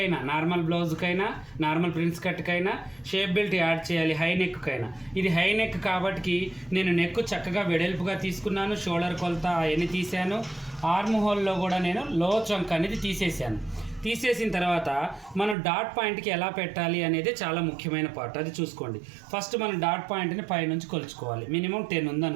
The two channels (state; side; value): drops out; left; at 15.6 s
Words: నార్మల్ బ్లౌజ్కైనా నార్మల్ ప్రిన్స్ కట్కైనా షేప్ బెల్ట్ యాడ్ చేయాలి, హై నెక్కైనా. ఇది హై నెక్ కాబట్టి నేను నెక్ చక్కగా వెడల్పుగా తీసుకున్నాను, షోల్డర్ కొలత అవన్నీ తీసాను. ఆర్మ్ హోల్లో కూడా నేను లో చంక్ అనేది తీసేసాను. తీసేసిన తర్వాత మనం డాట్ పాయింట్కి ఎలా పెట్టాలి అనేది చాలా ముఖ్యమైన పార్ట్, అది చూసుకోండి. ఫస్ట్ మనం డాట్ పాయింట్ని పైనుంచి కొలుచుకోవాలి. మినిమం 10 ఉంది